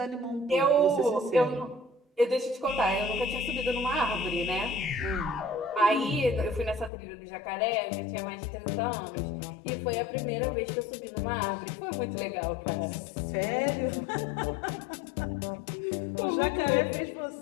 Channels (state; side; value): drops out; right; at 6.9 s